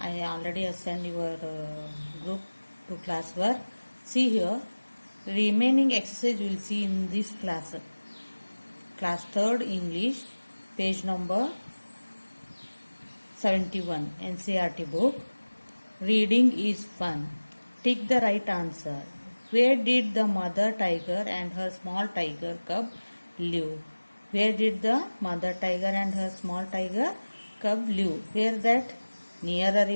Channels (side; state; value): both; inverted; correlation -1.00